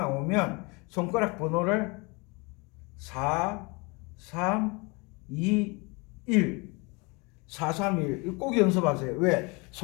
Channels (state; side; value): quieter; right; 28.3 dB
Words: 손가락 번호를 4 3 2 1 4 3 1 꼭 연습하세요. 왜?